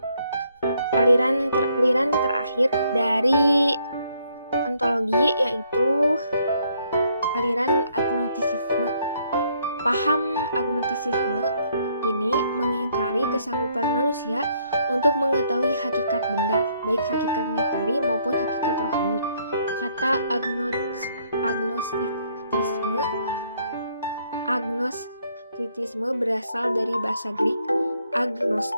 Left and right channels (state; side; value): inverted; both; correlation -0.69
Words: Aliran terakhir dari ontologi yaitu aliran agnostisisme. Paham agnostisisme ini mengingkari kesanggupan manusia untuk mengetahui hakikat benda, baik hakikat materi maupun hakikat rohani. Kata agnostitisme berasal dari bahasa Greek